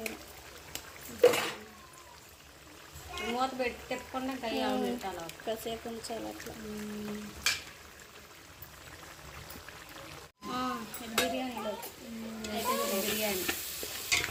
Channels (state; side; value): identical; both; correlation 1.00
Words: మూత పెట్టి తిప్పకుండా కయ్యాలు పెట్టాలి. కాసేపు ఉంచాలి అట్లా. బిర్యానీలో బిర్యానీ